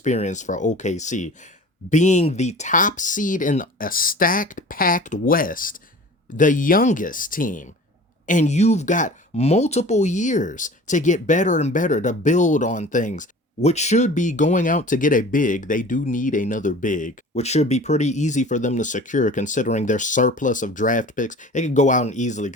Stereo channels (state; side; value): normal; both; correlation 0.42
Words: for OKC. Being the top seed in a stacked, packed West, the youngest team, and you've got multiple years to get better and better, to build on things, which should be going out to get a big. They do need another big, which should be pretty easy for them to secure considering their surplus of draft picks. They can go out and easily